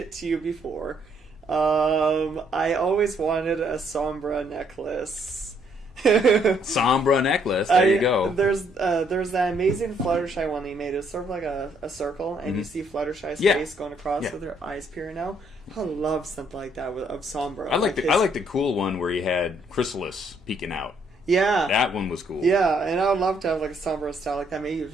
to you before. I always wanted a Sombra necklace. Sombra necklace. There you go. There's that amazing Fluttershy one that he made. It's sort of like a circle, and you see Fluttershy's face going across with her eyes peering out. I love something like that of Sombra. I like the cool one where he had Chrysalis peeking out. Yeah, that one was cool. Yeah, and I would love to have like a Sombra style like that. Maybe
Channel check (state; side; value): normal; both; correlation 0.69